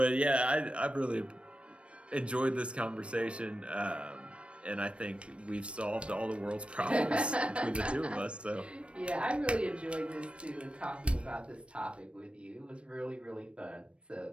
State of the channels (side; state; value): left; late; 0.060 ms